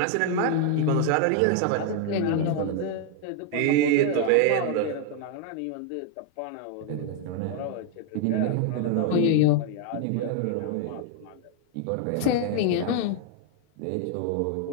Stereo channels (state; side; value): different; both; correlation 0.00